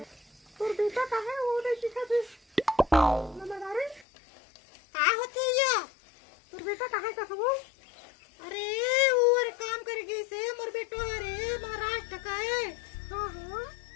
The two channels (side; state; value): right; drops out; at 4.0 s